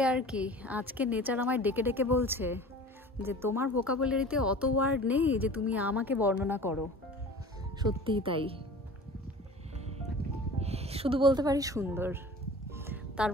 আর কি। আজকে নেচার আমায় ডেকে ডেকে বলছে যে তোমার ভোকাবুলারিতে অত ওয়ার্ড নেই যে তুমি আমাকে বর্ণনা করো। সত্যিই তাই, শুধু বলতে পারি সুন্দর, তার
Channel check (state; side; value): normal; both; correlation 0.41